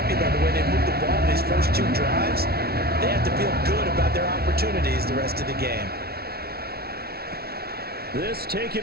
by the way they moved the ball in these first 2 drives. They have to feel good about their opportunities the rest of the game. This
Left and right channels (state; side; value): late; left; 0.45 ms